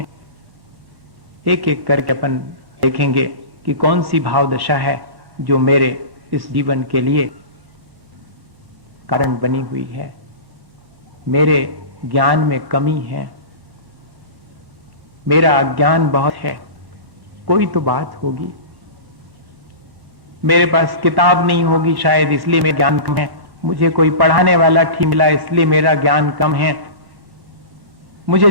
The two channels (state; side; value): late; left; 1.1 ms